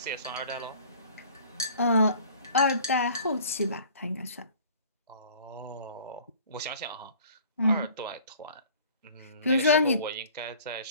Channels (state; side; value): inverted; both; correlation -0.49